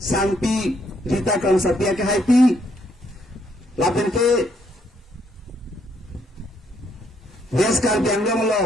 Rita Kamsapia ke Haiti lapen ke des kar bianglong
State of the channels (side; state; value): both; normal; correlation 0.71